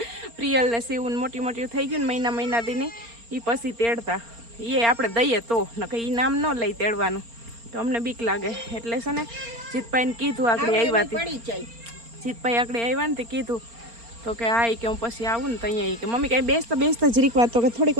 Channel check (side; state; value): left; late; 4.3 ms